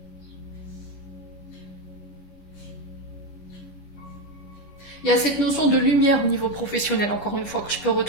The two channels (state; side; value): late; right; 11 ms